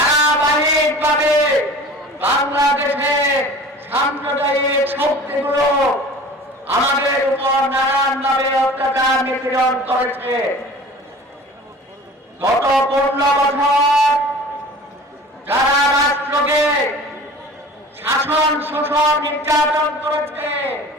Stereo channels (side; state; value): both; normal; correlation 0.42